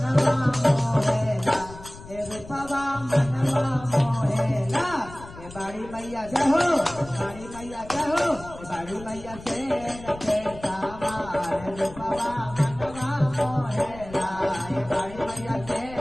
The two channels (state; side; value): noise; left; rumble, 16 dB below the sound